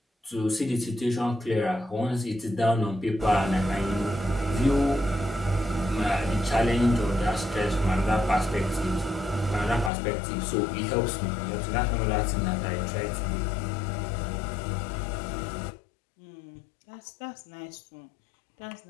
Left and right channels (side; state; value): right; drops out; at 9.9 s